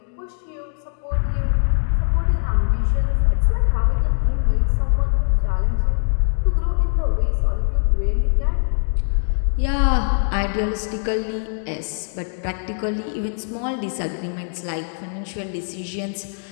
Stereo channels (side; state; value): right; silent; digital silence